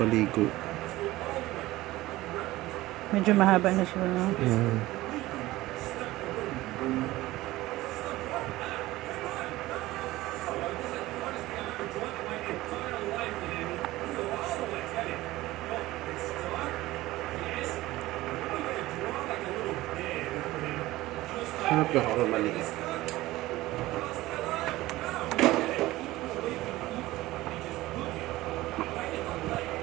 Medyo mahaba na siya, no? Hanap ka ako maliit.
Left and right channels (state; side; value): quieter; left; 17.7 dB